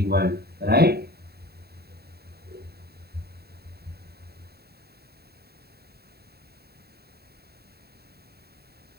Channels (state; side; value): late; left; 0.46 ms